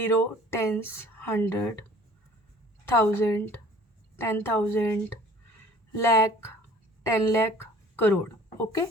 टेंस, 100, 1000, 10,000, लाख, 10 लाख, करोड़। ओके,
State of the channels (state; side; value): normal; both; correlation 0.50